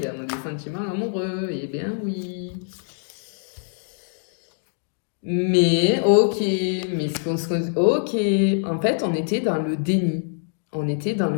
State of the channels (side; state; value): right; silent; 62 dB below the other